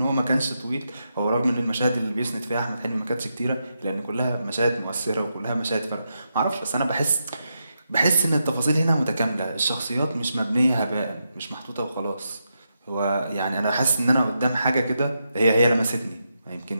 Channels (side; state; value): both; inverted; correlation -0.85